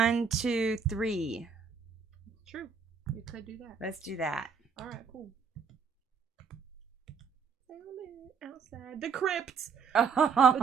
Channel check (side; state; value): left; quieter; 5.8 dB